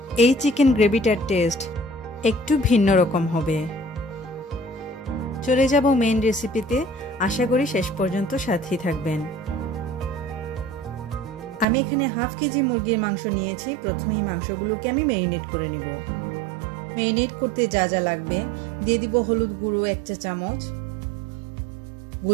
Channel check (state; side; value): drops out; left; at 11.7 s